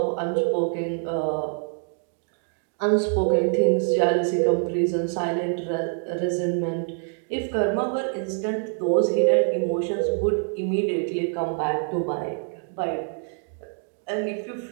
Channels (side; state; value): left; silent; 59 dB below the other